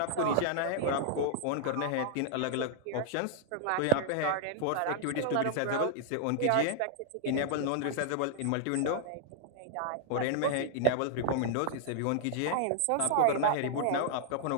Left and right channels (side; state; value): both; different; correlation -0.01